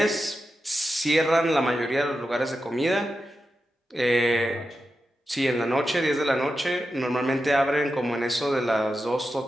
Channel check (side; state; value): both; normal; correlation 0.90